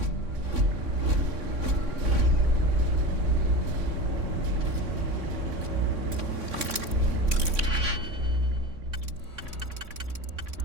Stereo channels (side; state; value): left; late; 3.6 ms